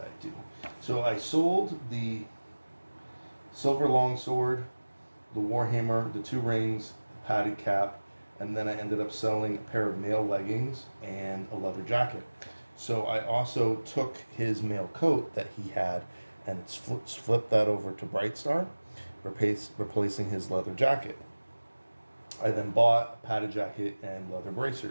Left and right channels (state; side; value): inverted; both; correlation -1.00